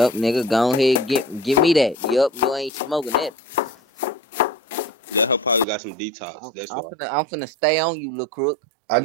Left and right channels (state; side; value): drops out; left; at 5.7 s